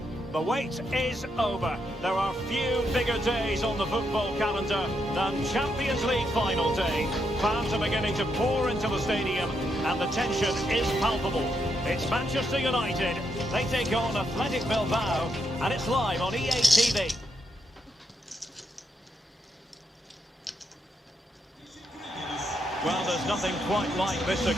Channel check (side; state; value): both; normal; correlation 0.80